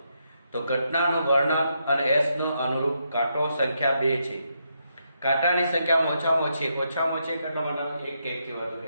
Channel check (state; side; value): inverted; both; correlation -0.80